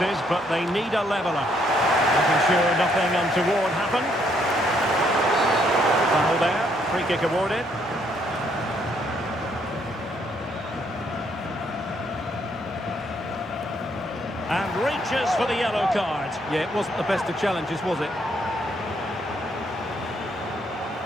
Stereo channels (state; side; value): normal; both; correlation 0.71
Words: but they need a leveller. Making sure nothing untoward happened. Foul there. Free kick awarded. And reaches for the yellow card. Yeah, it wasn't the best of challenges, was it?